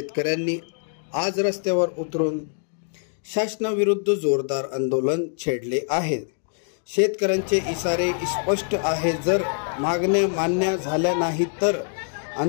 आज रस्त्यावर उतरून शासनाविरुद्ध जोरदार आंदोलन छेडले आहे। शेतकऱ्यांचे इशारे स्पष्ट आहे, जर मागण्या मान्य झाल्या नाही तर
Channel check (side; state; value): right; silent; 57 dB below the other